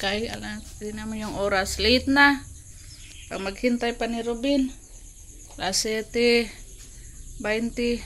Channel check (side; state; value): both; identical; correlation 1.00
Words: hindi naman yung oras. Late na. Pag maghintay pa ni Robin. Alas 7:20,